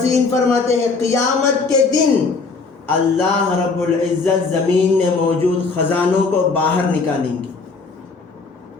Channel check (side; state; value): right; quieter; 4.3 dB